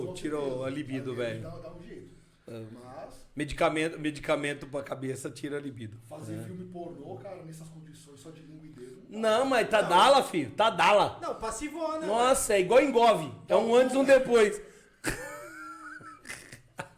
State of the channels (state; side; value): identical; both; correlation 1.00